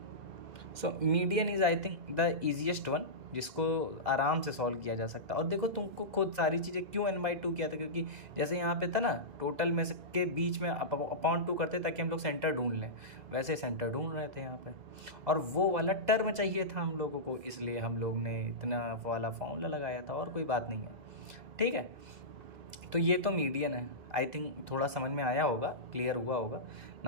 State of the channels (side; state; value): left; late; 2.0 ms